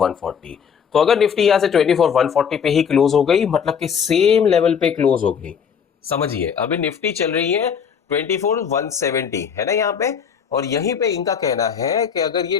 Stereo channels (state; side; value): quieter; right; 7.2 dB